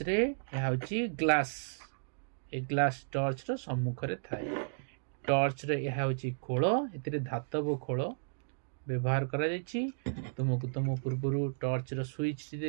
रे यह होची ग्लास ए ग्लास टॉर्च रो सम्मुख रे थाए। टॉर्च रे यह होची खोल एतिरे धातव खोल व्यवहार करा जायछि। तुमको तुम पूर्व टॉर्च रो स्विच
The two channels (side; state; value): left; silent; digital silence